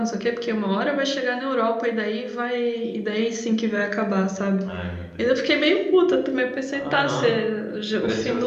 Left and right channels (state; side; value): identical; both; correlation 1.00